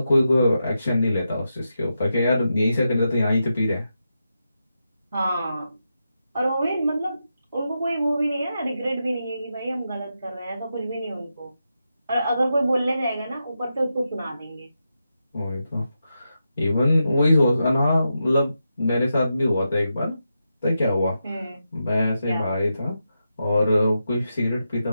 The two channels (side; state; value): both; inverted; correlation -0.87